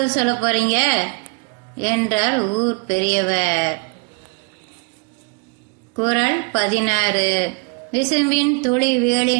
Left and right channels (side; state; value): left; quieter; 34.0 dB